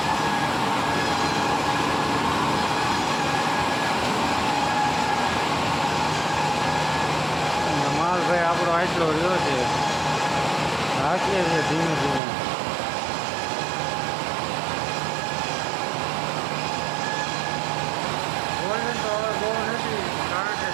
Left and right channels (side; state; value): left; drops out; at 12.2 s